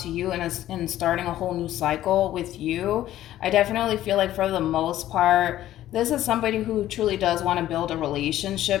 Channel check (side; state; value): right; quieter; 13.4 dB